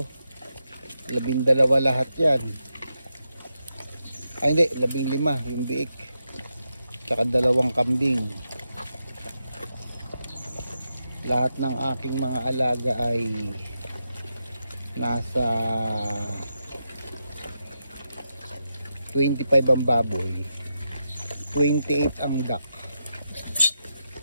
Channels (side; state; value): both; inverted; correlation -0.85